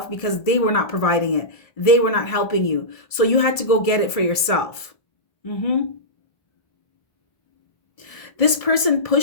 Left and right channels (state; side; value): late; right; 1.7 ms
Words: because they were not providing it. They were not helping you. So you had to go get it for yourself. This person